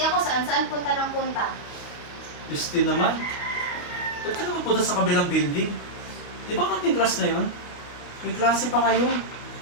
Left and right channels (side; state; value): right; late; 29 ms